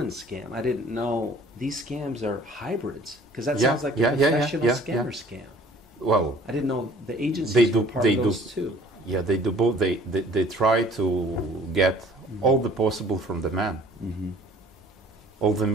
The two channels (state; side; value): normal; both; correlation 0.53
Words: scam. I didn't know these scams are hybrids, because that sounds like a professional scammer scam. Well, I didn't know the agencies were part of those too. Yeah, they do both. They try to get all the possible from the man. All the